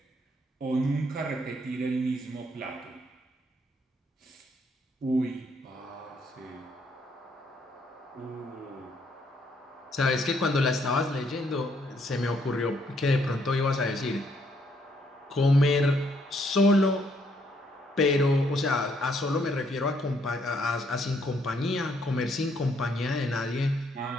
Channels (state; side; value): normal; both; correlation 0.70